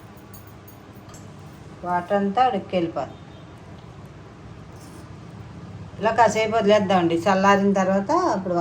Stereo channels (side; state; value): both; identical; correlation 1.00